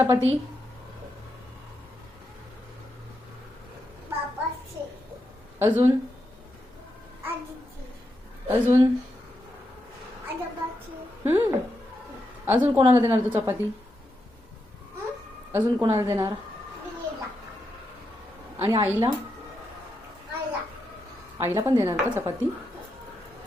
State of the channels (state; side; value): normal; both; correlation 0.84